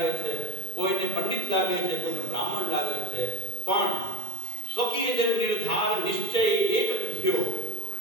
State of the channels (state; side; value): late; right; 1.9 ms